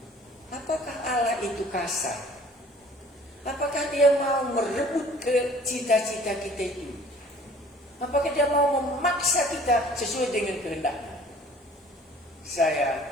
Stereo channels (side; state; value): both; normal; correlation 0.51